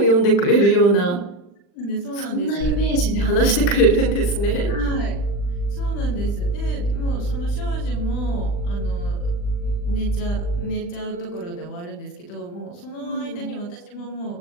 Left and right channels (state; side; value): late; right; 40 ms